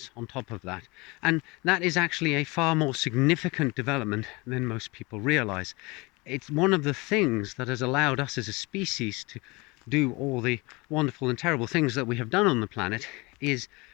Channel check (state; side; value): quieter; right; 25.4 dB